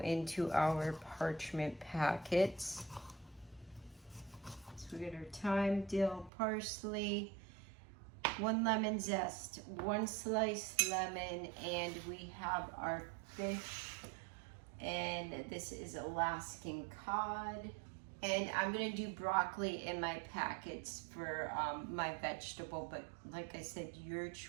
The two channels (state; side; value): drops out; left; at 6.3 s